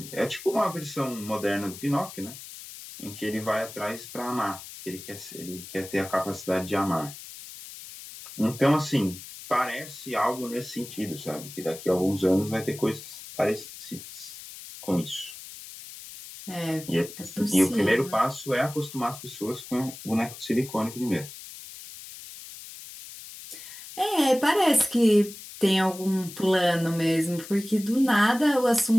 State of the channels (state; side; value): noise; left; hiss, 14 dB below the sound